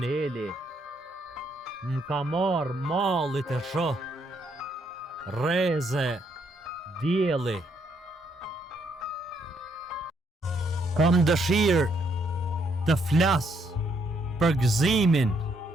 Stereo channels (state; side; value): normal; both; correlation 0.73